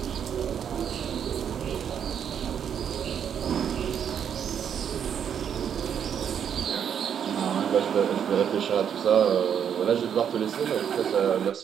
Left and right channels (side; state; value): left; quieter; 8.3 dB